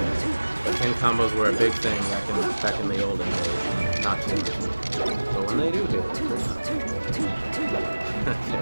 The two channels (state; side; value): inverted; both; correlation -1.00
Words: But team combos were a big thing back in the olden days. Not too much. But when they do hit, it's pretty